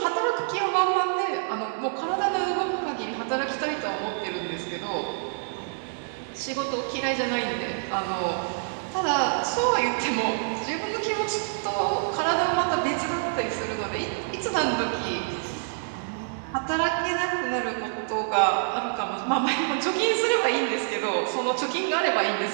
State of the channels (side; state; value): left; silent; digital silence